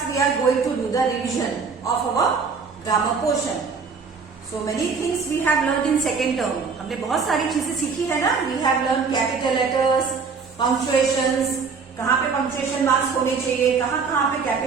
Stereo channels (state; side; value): quieter; left; 5.2 dB